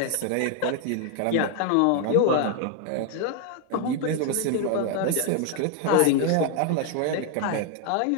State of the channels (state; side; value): different; both; correlation 0.00